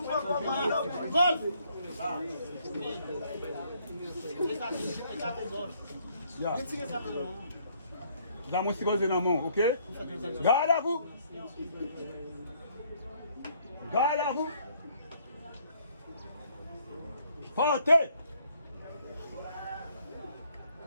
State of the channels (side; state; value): both; inverted; correlation -0.66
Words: le monde. Golf. Yeah. Là, moi, si vous êtes dans mon, ok? Garde à vous. Garde à vous. Portez.